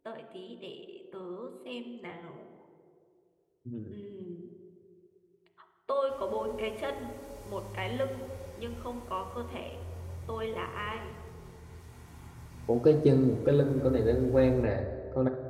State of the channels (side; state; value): both; identical; correlation 1.00